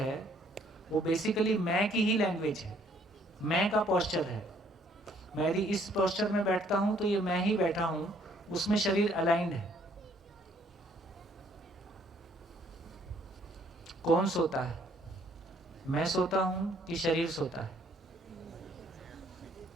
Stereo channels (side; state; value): both; normal; correlation 0.64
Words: वो बेसिकली मैं की ही लैंग्वेज है, मैं का पोस्चर है। मैं यदि इस पोस्चर में बैठता हूं तो ये मैं ही बैठा हूं, उसमें शरीर अलाइंड है। कौन सोता है? मैं सोता हूं कि शरीर सोता है?